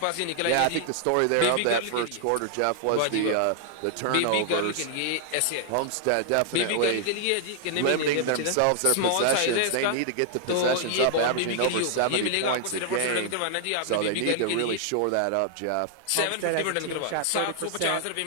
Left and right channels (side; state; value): both; different; correlation 0.00